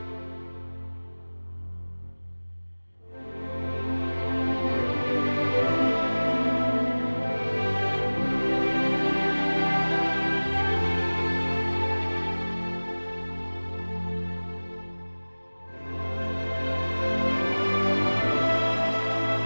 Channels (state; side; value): inverted; both; correlation -1.00